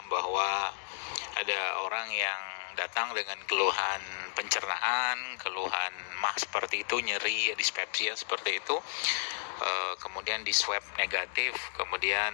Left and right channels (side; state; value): right; silent; digital silence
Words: bahwa ada orang yang datang dengan keluhan pencernaan, keluhan mah seperti itu, nyeri, dispepsia seperti itu. Kemudian di swab negatif, kemudian